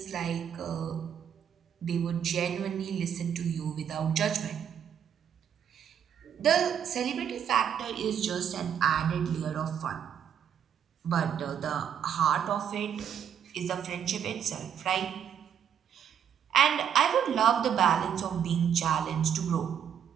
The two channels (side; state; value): left; quieter; 8.6 dB